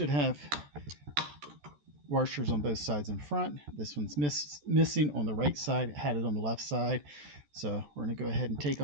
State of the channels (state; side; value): late; left; 14 ms